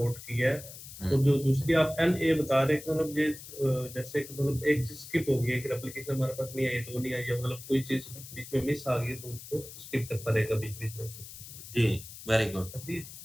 किया है। तो जो दूसरी आप NA बता रहे हैं, मतलब ये जैसे मतलब एक चीज स्किप हो गई है कि एप्लीकेशन हमारे पास नहीं आई, दो नहीं आई है, मतलब कोई चीज बीच में मिस आ गई तो उसको स्किप कर पड़ेगा बीच बीच में से। जी वेरी गुड,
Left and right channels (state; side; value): noise; left; hiss, 14 dB below the sound